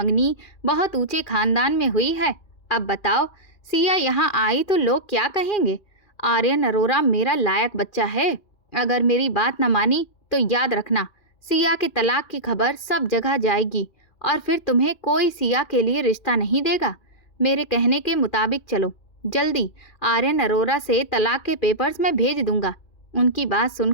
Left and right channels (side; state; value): right; late; 2.4 ms